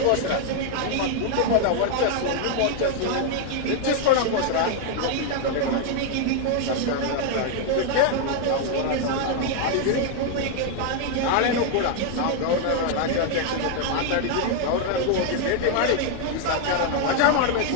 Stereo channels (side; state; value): both; different; correlation 0.00